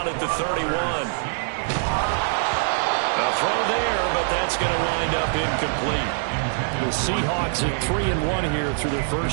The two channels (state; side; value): silent; left; digital silence